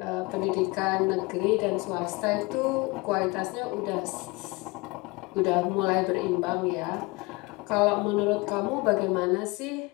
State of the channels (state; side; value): quieter; right; 24.8 dB